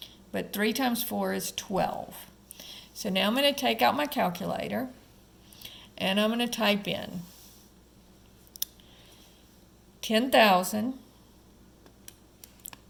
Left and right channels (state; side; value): identical; both; correlation 1.00